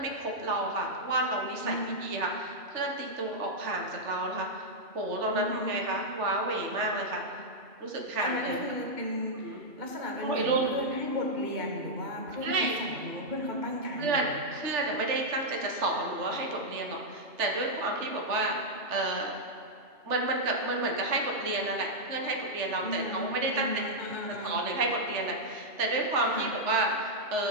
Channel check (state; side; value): late; left; 3.3 ms